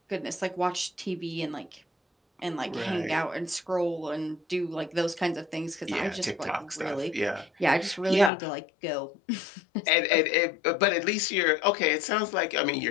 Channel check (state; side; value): drops out; right; at 8.3 s